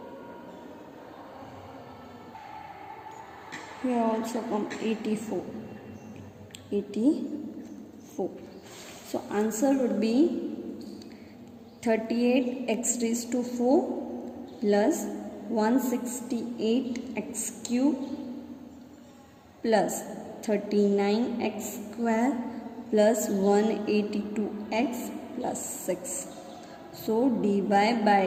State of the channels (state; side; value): identical; both; correlation 1.00